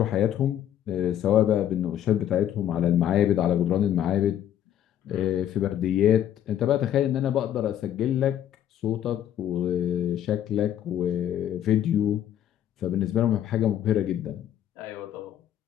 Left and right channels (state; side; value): quieter; right; 10.9 dB